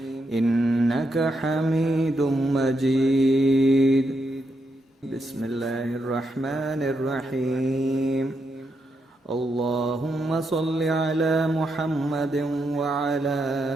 إنك حميد مجيد. بسم الله الرحمن الرحيم. اللهم صل على محمد وعلى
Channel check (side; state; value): both; normal; correlation 0.82